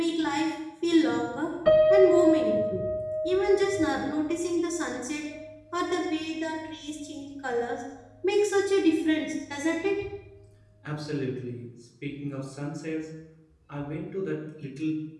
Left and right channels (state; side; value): identical; both; correlation 1.00